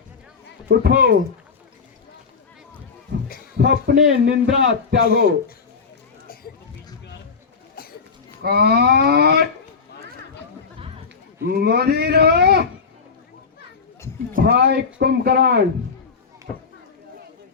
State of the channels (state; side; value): quieter; right; 5.4 dB